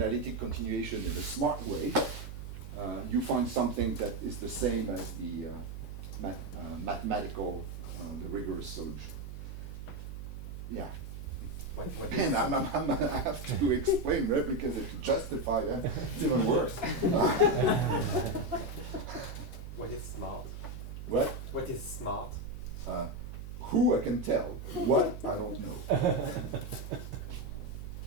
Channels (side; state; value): right; noise; hum, 9 dB below the sound